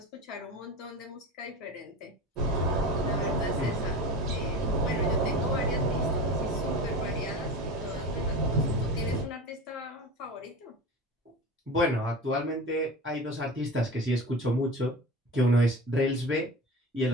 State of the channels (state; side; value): normal; both; correlation 0.31